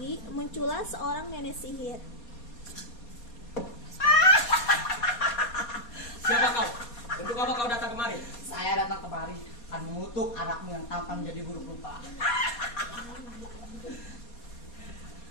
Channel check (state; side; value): late; right; 4.2 ms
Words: muncullah seorang nenek sihir. Siapa kau? Untuk apa kau datang kemari? Saya datang kemari akan mengutuk anakmu yang tampan menjadi buruk rupa.